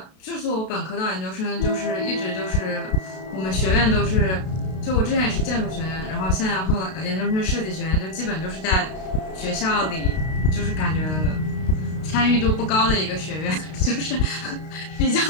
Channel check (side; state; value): right; late; 32 ms